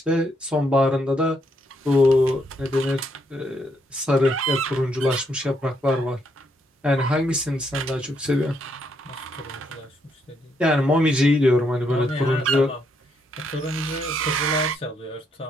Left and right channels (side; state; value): both; normal; correlation 0.75